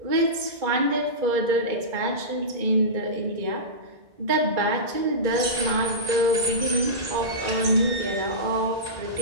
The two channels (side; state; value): left; late; 2.2 ms